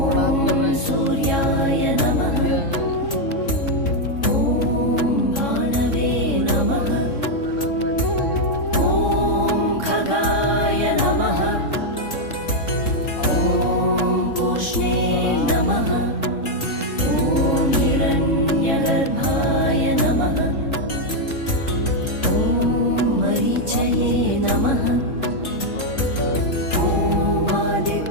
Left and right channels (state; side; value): late; right; 3.6 ms